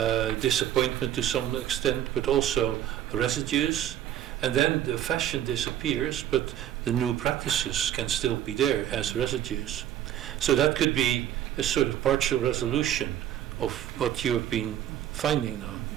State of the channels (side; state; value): left; quieter; 11.3 dB